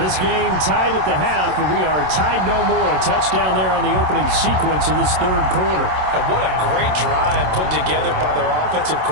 game tied at the half, and we are tied no more. A touchdown there on the opening sequence of this third quarter. And what a great drive put together by their offensive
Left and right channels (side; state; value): left; late; 27 ms